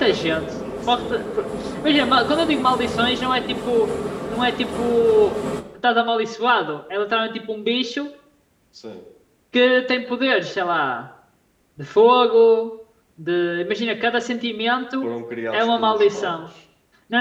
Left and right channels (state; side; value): identical; both; correlation 1.00